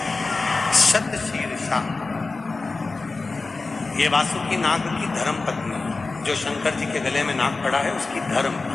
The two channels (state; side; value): quieter; right; 3.7 dB